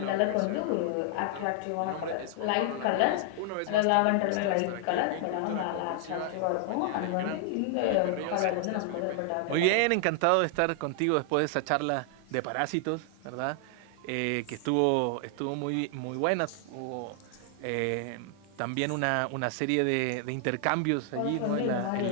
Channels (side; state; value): both; different; correlation 0.00